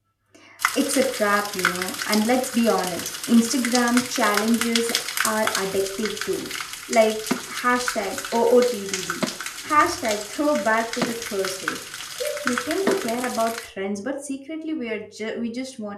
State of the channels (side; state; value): both; identical; correlation 1.00